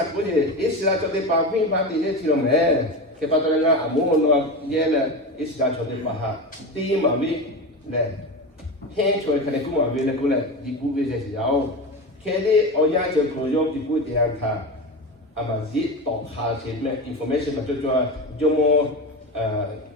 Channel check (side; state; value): both; normal; correlation 0.23